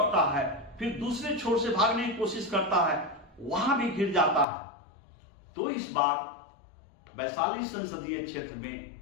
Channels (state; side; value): drops out; right; at 4.5 s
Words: है, फिर दूसरे छोर से भागने की कोशिश करता है, वहां भी घिर जाता है। तो इस बार वैशाली संसदीय क्षेत्र